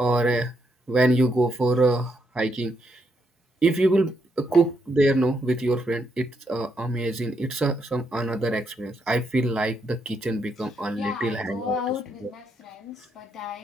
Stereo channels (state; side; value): normal; both; correlation 0.78